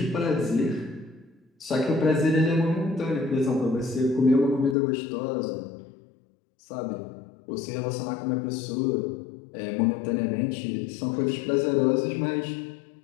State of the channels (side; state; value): right; drops out; at 4.8 s